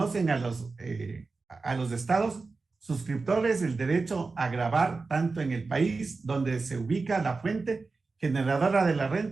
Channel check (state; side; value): quieter; left; 4.0 dB